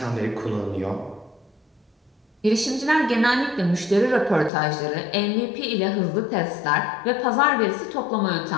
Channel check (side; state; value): right; drops out; at 4.5 s